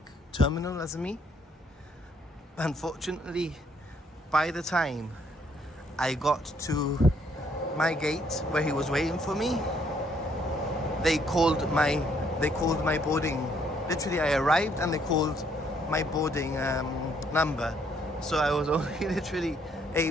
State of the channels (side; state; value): both; normal; correlation 0.68